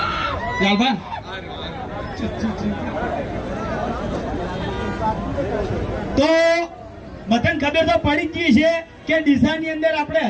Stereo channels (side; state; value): both; identical; correlation 1.00